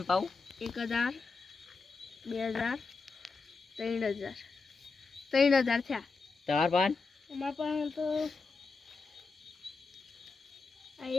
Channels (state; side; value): quieter; right; 4.4 dB